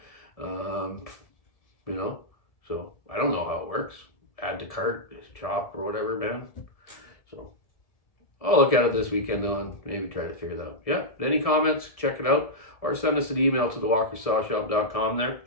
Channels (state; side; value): late; right; 1.6 ms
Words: so I don't know how it works. Add to cart, shop, or whatever, man. So I'll look at it this weekend though and maybe try to figure that out. Yeah, any comments, check it out, or send us an email to thewalkersawshop.com there.